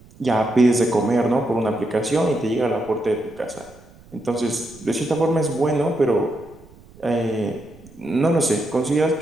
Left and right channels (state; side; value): noise; right; rumble, 24 dB below the sound